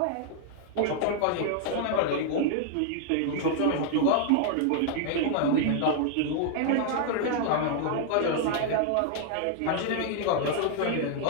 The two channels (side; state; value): both; different; correlation 0.00